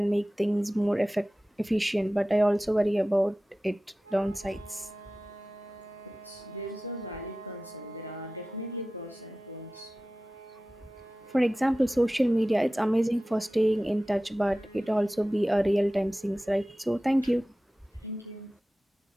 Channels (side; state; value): both; normal; correlation 0.96